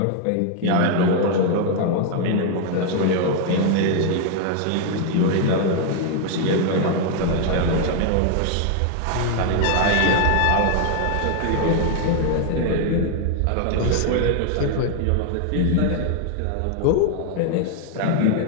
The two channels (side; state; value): both; different; correlation 0.00